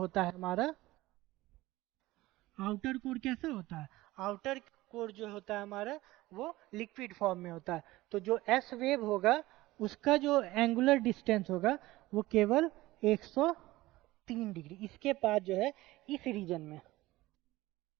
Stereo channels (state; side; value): quieter; left; 18.4 dB